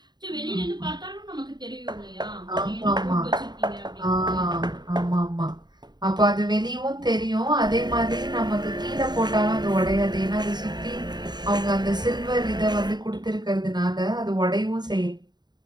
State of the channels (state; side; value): late; left; 0.20 ms